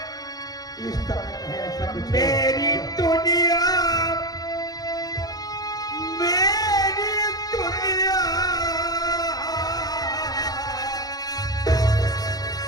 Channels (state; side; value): late; right; 0.19 ms